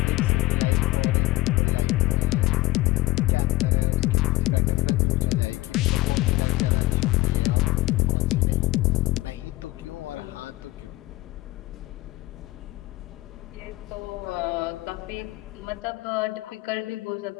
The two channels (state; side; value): quieter; right; 18.1 dB